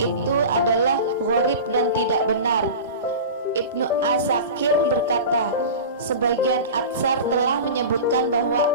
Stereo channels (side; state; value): both; inverted; correlation -0.32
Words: adalah gharib dan tidak benar. Ibnu Asakir berkata, sebagian Atsar telah menyebutkan bahwa